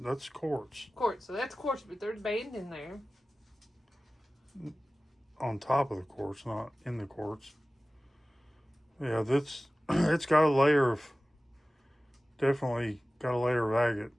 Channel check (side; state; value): both; normal; correlation 0.97